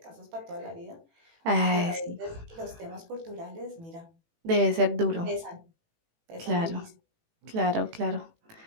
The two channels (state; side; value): late; left; 18 ms